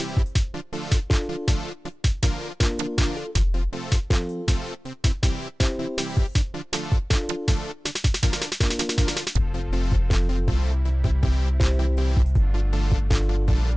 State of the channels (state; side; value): normal; both; correlation 0.98